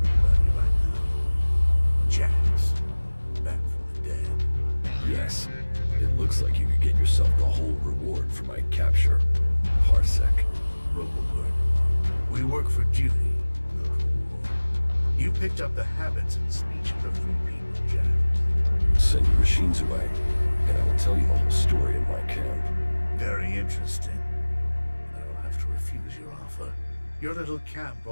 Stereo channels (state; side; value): inverted; both; correlation -1.00